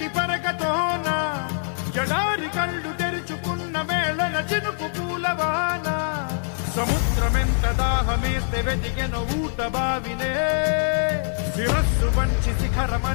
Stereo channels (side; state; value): right; silent; digital silence